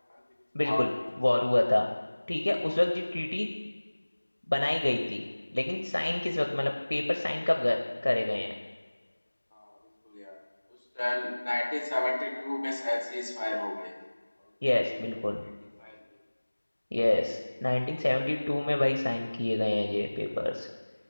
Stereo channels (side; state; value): both; inverted; correlation -1.00